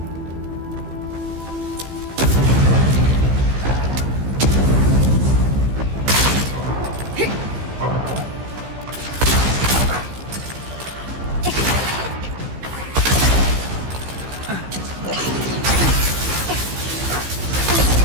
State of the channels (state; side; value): late; left; 15 ms